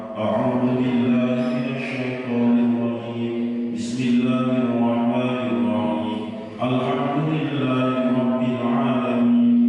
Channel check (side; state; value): both; identical; correlation 1.00